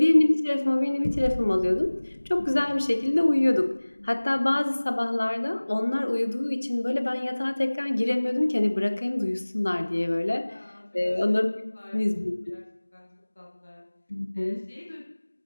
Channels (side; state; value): both; inverted; correlation -1.00